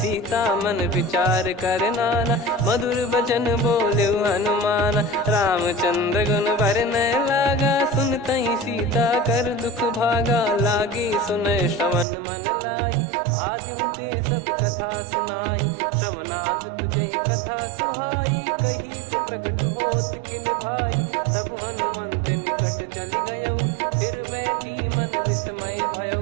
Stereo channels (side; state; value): left; drops out; at 12.1 s